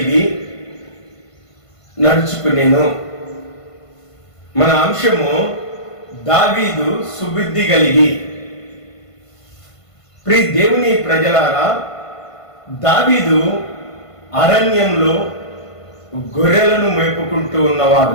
నడుచుకునేను. మన అంశము దావీదు సుబుద్ధి కలిగి. ప్రియ దేవుని ప్రజలారా, దావీదు అరణ్యంలో గొర్రెలను మేపుకుంటూ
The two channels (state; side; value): late; right; 1.5 ms